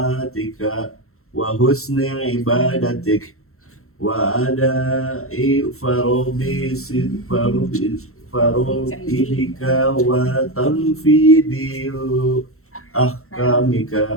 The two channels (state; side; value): late; right; 0.63 ms